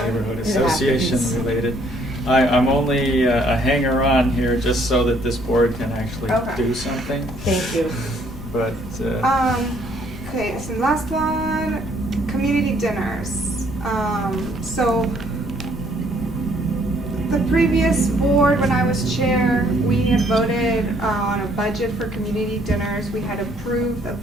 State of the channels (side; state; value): left; noise; rumble, 14 dB below the sound